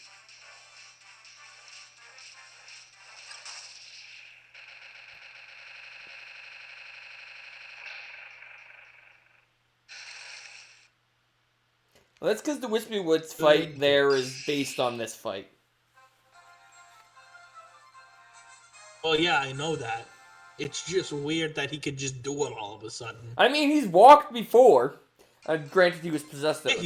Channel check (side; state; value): both; identical; correlation 1.00